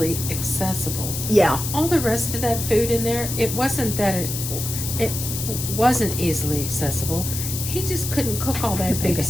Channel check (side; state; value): left; noise; hiss, 5 dB below the sound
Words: accessible. Yeah. All the rest of that food in there, it wasn't that it wasn't easily accessible. He just couldn't cook all that big